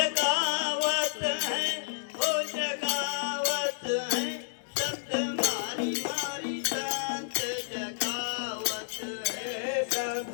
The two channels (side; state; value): right; silent; 57 dB below the other